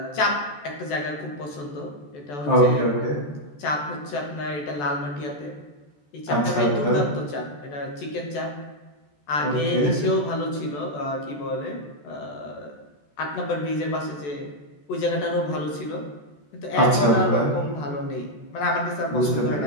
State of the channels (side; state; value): right; late; 14 ms